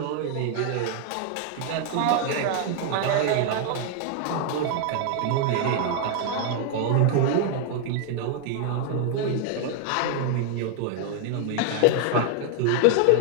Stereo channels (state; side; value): different; both; correlation 0.00